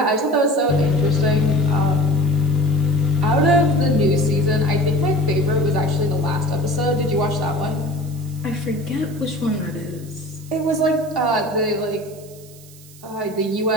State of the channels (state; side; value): noise; right; hiss, 22 dB below the sound